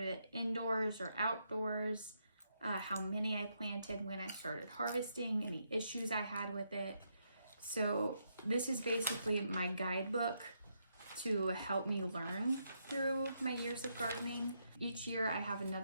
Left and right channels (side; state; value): both; inverted; correlation -0.79